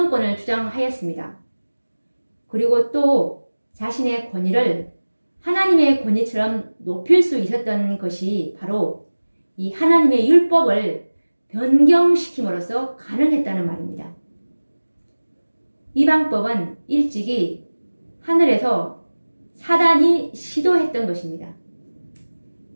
주장하였습니다. 그리고 또 자신의 권위를 하나님의 권위처럼 높일 수 있었던 것이 바로 이 하나님의 율법을 변경시킴으로써 가능했다는 말입니다. 이 방법은 일찍이 하늘에서 사단이 시도했던 것입니다.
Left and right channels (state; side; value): inverted; both; correlation -1.00